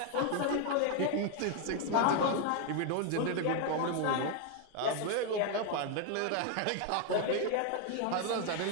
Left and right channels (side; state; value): both; different; correlation 0.01